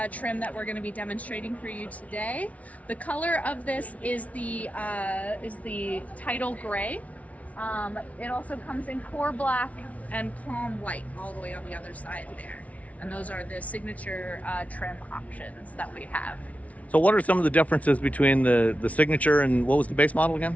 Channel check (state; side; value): late; right; 0.067 ms